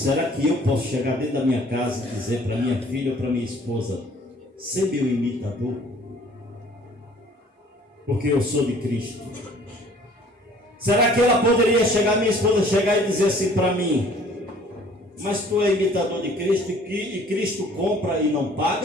que eu posso chegar dentro da minha casa e dizer para minha filha ou para minha esposa, ser meu imitador? Porque eu sou de Cristo. Será que ela poderia chegar, minha esposa chegar e dizer assim para mim, mas tu é imitador de Cristo e Cristo compra e não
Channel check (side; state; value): both; normal; correlation 0.54